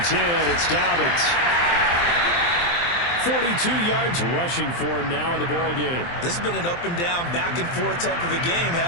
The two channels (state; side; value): late; right; 23 ms